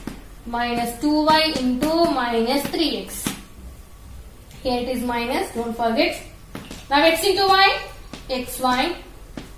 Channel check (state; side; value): identical; both; correlation 1.00